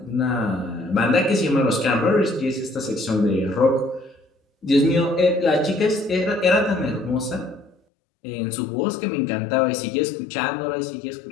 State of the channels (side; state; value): right; drops out; at 7.8 s